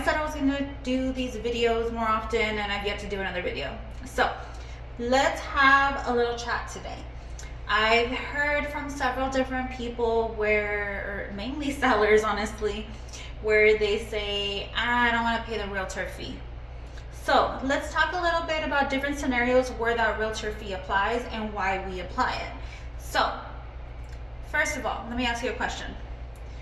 said I was going to do these videos more often and I've yet to do another video. So let's have a little chat today. I've heard from several different people or mainly sellers honestly, where they say, I don't want to pay the realtor fee. So let's talk a little bit about different scenarios where that realtor fee applies and why we apply it. So, first of all, let me ask you a question.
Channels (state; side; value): identical; both; correlation 1.00